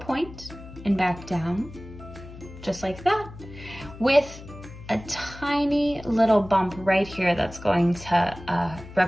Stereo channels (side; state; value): left; noise; hum, 16 dB below the sound